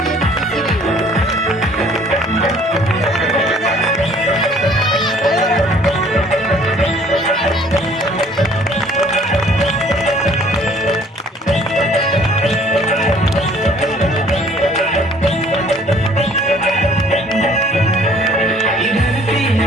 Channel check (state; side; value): normal; both; correlation 0.56